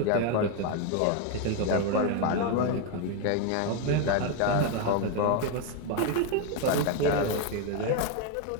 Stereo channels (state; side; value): different; both; correlation 0.02